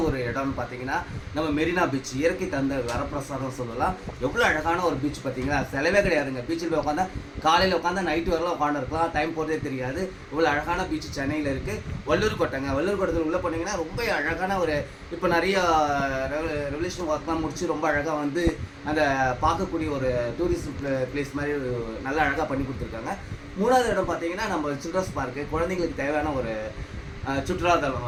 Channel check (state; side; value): identical; both; correlation 1.00